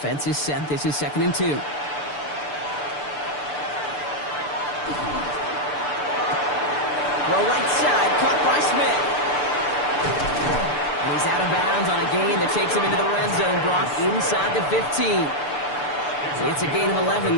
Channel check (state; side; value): late; right; 6.8 ms